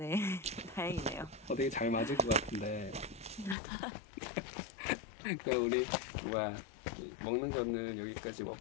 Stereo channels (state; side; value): drops out; right; at 3.6 s